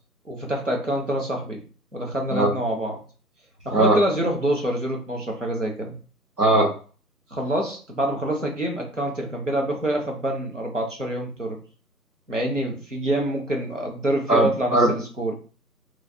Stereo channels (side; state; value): both; normal; correlation 0.47